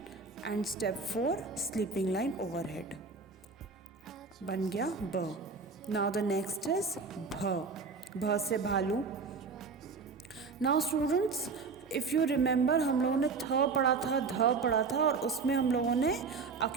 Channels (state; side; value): quieter; left; 4.7 dB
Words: and step 4 sleeping line overhead. बन गया ब। नाउ द नेक्स्ट इज भ। भ से भालू। Now students, if you remember, हम लोगों ने थ पढ़ा था, ध पढ़ा था, और उसमें हम लोगों ने